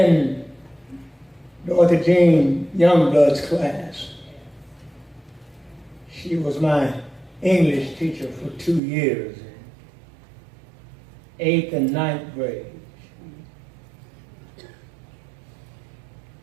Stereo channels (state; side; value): drops out; left; at 8.8 s